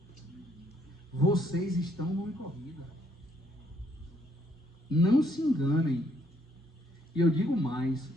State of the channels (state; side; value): normal; both; correlation 0.69